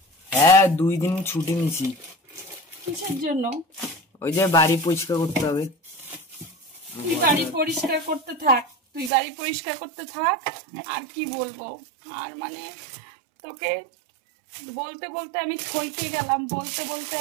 হ্যাঁ 2 দিন ছুটি নিছি। কিসের জন্য? ওই যে বাড়ি পরিষ্কার করতে হবে। তুই বাড়ি পরিষ্কার করতে থাক, তুই বাড়ি পরিষ্কার করতে থাক। আর কি বলবো, আর মানে তোকে বলতে বলতে আমি থইকে গেলাম, বলতে বলতে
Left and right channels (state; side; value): drops out; left; at 9.1 s